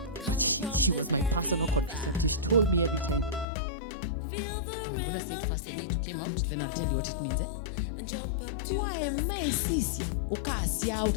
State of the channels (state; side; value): drops out; right; at 3.5 s